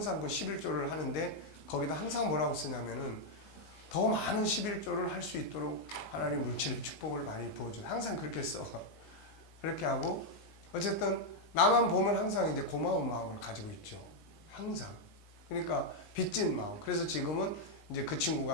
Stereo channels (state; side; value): late; right; 19 ms